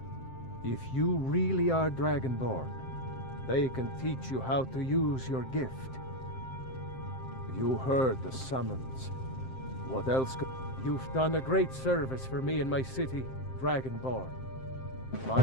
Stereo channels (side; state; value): right; late; 7.7 ms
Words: If you really are Dragonborn, they can teach you how to use your gift. You heard the summons. What else could... You've done a great service for me and my city, Dragonborn.